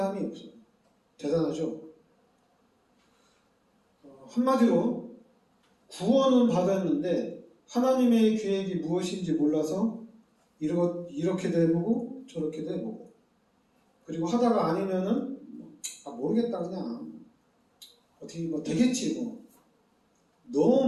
없어요. 대단하죠? 한마디로 구원은 받았는데 하나님의 계획이 무엇인지 몰라서 이렇게도 해보고 저렇게도 해보고 그리고 하다가 아니면은 모르겠다 그냥 어떻게 되겠지 뭐.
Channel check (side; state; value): both; identical; correlation 1.00